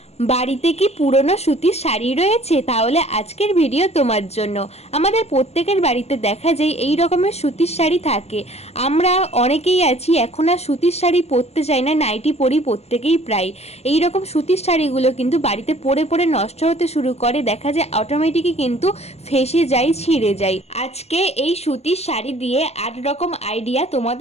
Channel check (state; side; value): late; right; 0.30 ms